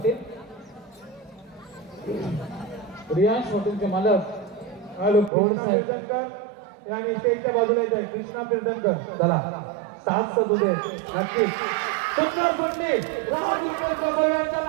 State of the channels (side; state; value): left; drops out; at 5.3 s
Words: रियांश हॉटेलचे मालक आणि स्टेजच्या बाजूला येत आहे कृष्णा कीर्तनकर. चला साथ सदुदे नक्कीच सुंदर सुंदरी राज रुपेश गोसावी यांच्या